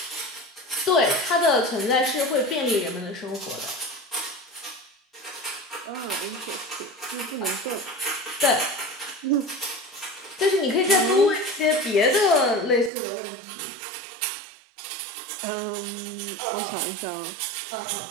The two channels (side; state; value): left; drops out; at 12.9 s